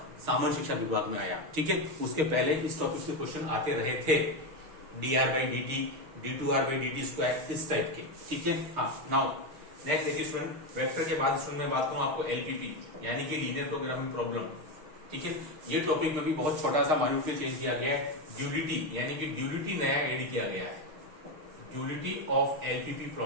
सामान्य शिक्षा विभाग में आया। ठीक है, उसके पहले इस टॉपिक से क्वेश्चन आते रहे थे, dr/dt, d2r/dt², इस टाइप के। ठीक है, हाँ। नाउ नेक्स्ट देखिए स्टूडेंट, वेक्टर के बाद स्टूडेंट मैं बात करूं आपको एलपीपी यानी कि लीनियर प्रोग्रामिंग प्रॉब्लम। ठीक है, ये टॉपिक में भी बहुत छोटा सा माइन्यूटली चेंज किया गया है। ड्यूलिटी यानी कि ड्यूलिटी नया एड किया गया है, ड्यूलिटी ऑफ एलपीपी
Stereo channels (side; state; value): left; late; 6.5 ms